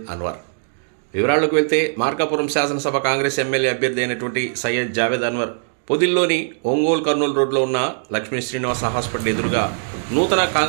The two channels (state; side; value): silent; left; digital silence